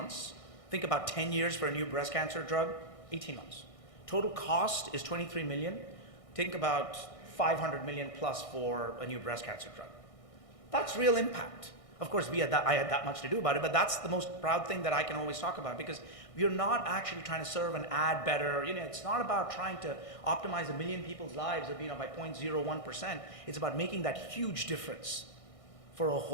Think about 10 years for a new breast cancer drug, 18 months. Total cost is $23 million. Think about $500 million plus for a new breast cancer drug. That's real impact. Of course, I had that much to do about it, but that's the most proud thing that I can always talk about, because we're not actually trying to serve and add better. It's not about trying to optimize 1 million people's lives by 0.01%. It's about making that huge difference for a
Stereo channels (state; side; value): late; right; 1.6 ms